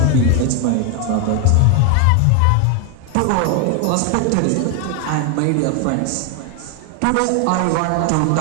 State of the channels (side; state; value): both; different; correlation 0.01